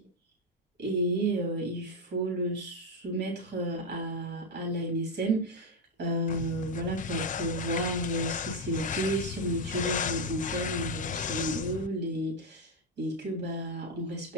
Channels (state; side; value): normal; both; correlation 0.04